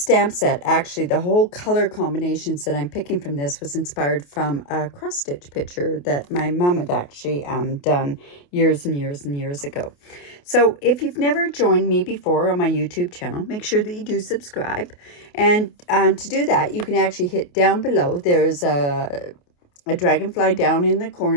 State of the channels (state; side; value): late; right; 28 ms